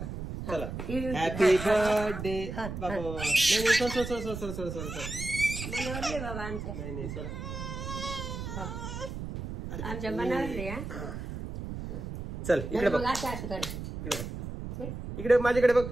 चला हॅपी बर्थडे. बाबा नाही sir sir sir sir sir sir sir बाबा आमच्या. नाही नाही सर आमच्या मनावरले. चल इकडे बघ. असं करायचं इकडे बघ. इकडे माझ्याकडे बघ.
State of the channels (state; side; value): noise; right; rumble, 7 dB below the sound